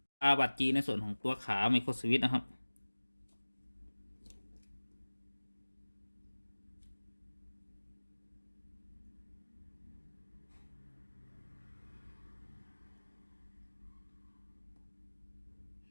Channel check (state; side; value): inverted; both; correlation -1.00